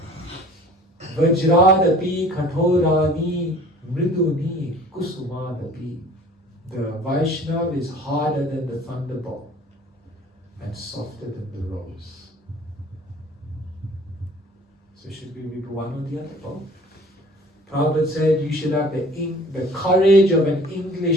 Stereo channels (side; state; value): both; normal; correlation 0.48